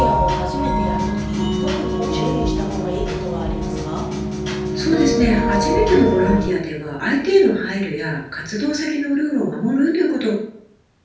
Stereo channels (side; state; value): both; identical; correlation 1.00